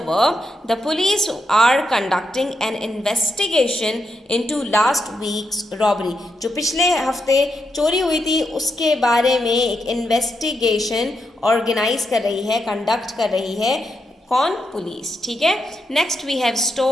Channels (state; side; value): normal; both; correlation 0.83